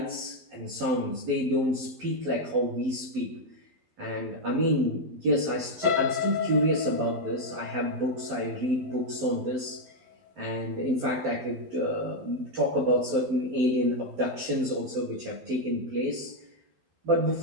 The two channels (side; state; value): left; late; 12 ms